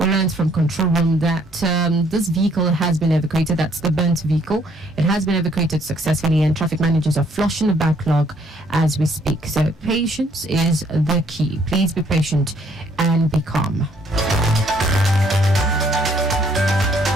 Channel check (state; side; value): normal; both; correlation 0.65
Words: learned from control room that this vehicle has been evacuated. That's the burnt vehicle. It has been evacuated successfully, and traffic managers are flushing the backlog as we speak. So patience is the key. Please be patient and be calm.